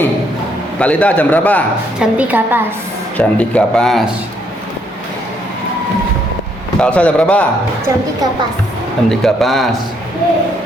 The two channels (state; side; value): normal; both; correlation 0.71